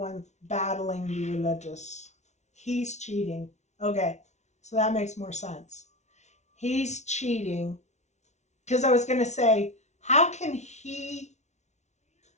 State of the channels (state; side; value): late; right; 0.33 ms